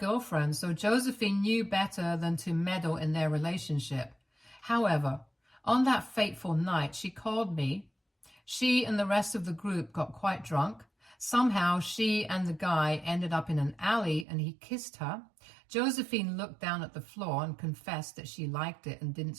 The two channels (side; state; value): left; drops out; at 14.2 s